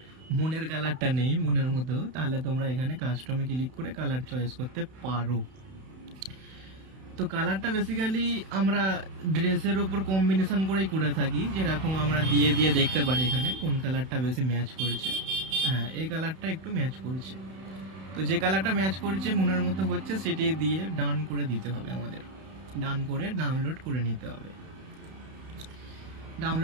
মনের কালারটা নেই মনের মধ্যেও, তাহলে তোমরা এখানে কাস্টমে ক্লিক করে কালার চয়েস করতে পারো। তো কালারটা বেসিক্যালি আমরা ড্রেসের উপর কম্বিনেশন করেই করে থাকি। যেরকম আমরা দিয়ে দিয়ে দেখতে পারি এখানে কোন কালারটা বেশি ম্যাচ করছে। হ্যাঁ, এই কালারটা একটু ম্যাচ করছে। তো যে কালারটা ম্যাচ করছে মনের মতো হচ্ছে সেটি দিয়ে ডান করে দিতে হবে আমাদের। ডান করে ডাউনলোড করে নিতে হবে।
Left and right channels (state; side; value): late; left; 31 ms